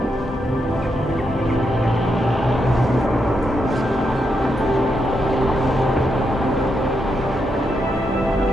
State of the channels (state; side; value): normal; both; correlation 0.82